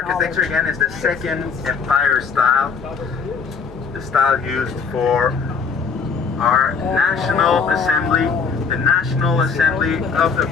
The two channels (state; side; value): quieter; right; 5.5 dB